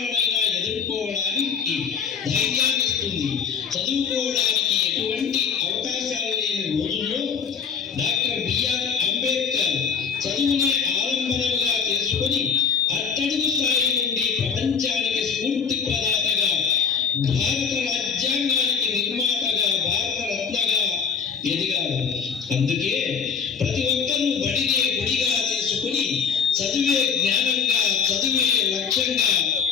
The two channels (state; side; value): quieter; right; 6.5 dB